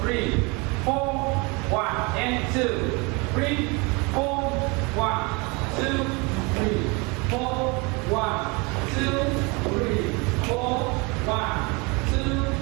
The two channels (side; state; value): left; quieter; 28.4 dB